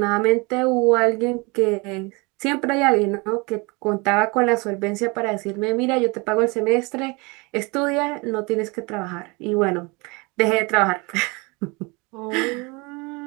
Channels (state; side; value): quieter; left; 27.6 dB